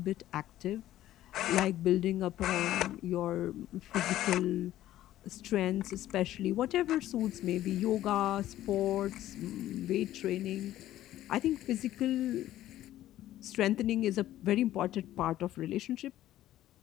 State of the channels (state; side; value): quieter; right; 13.7 dB